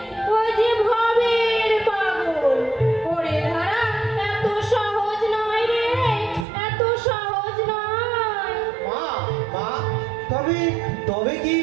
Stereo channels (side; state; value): left; drops out; at 6.5 s